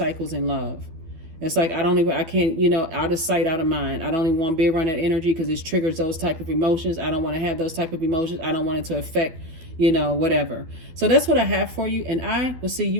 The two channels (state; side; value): late; left; 12 ms